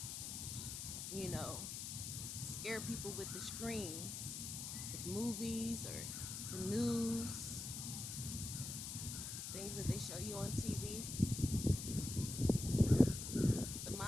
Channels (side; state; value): left; noise; hiss, 5 dB below the sound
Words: scare people with the screens, with movies or the news, things that they show you on TV. The